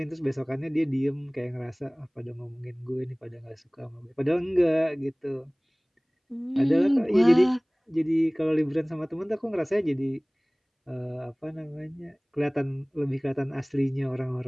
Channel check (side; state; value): both; identical; correlation 1.00